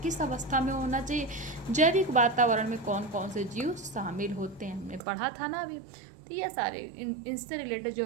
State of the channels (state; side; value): drops out; left; at 5.0 s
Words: अवस्था में होना चाहिए। जैविक वातावरण में कौन कौन से जीव शामिल होते हैं, हमने पढ़ा था ना अभी। तो ये सारे इनसे रिलेटेड जो